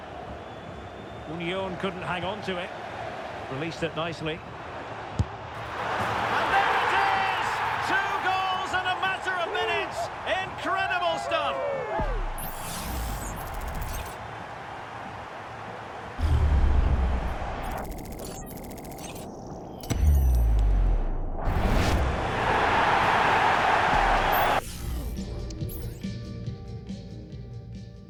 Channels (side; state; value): both; identical; correlation 1.00